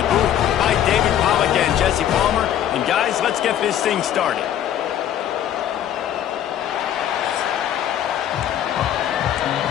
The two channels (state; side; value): quieter; right; 10.7 dB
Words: booth by David Pollack and Jesse Palmer. And guys, let's get this thing started.